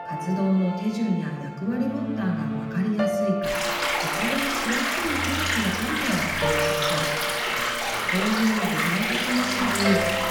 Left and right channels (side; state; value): both; identical; correlation 1.00